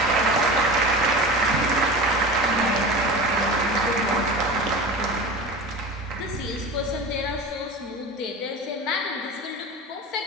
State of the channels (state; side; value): normal; both; correlation 0.31